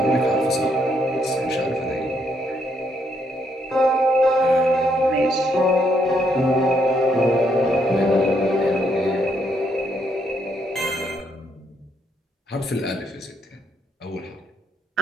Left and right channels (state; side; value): normal; both; correlation 0.74